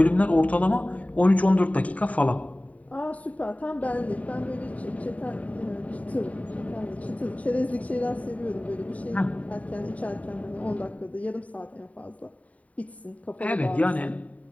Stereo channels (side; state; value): right; late; 0.069 ms